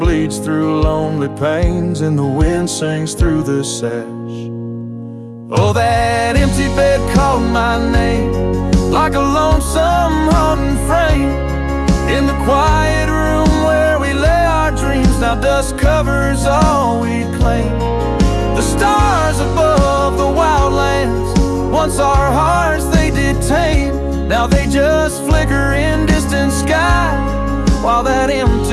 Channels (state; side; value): identical; both; correlation 1.00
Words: through lonely panes and the wind sings through the sash. Oh, that empty bed called my name like a lonesome haunting frame in the quiet room where we lay our dreams. Now dust covers all we claim. The stars above the wildlands, once our hearts they did tame, now they just flicker in distant sky, while that